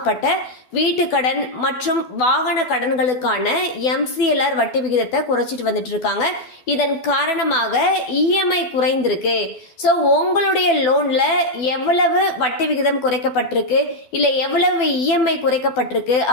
வீட்டு கடன் மற்றும் வாகன கடன்களுக்கான MCLR வட்டி விகிதத்தை குறைச்சிட்டு வந்துட்டு இருக்காங்க. இதன் காரணமாக EMI குறைந்திருக்கு. ஸோ உங்களுடைய லோன்ல எவ்வளவு வட்டி விகிதம் குறைக்கப்பட்டிருக்கு, இல்ல எவ்வளவு EMI குறைக்கப்பட்டிருக்கு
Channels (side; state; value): right; late; 12 ms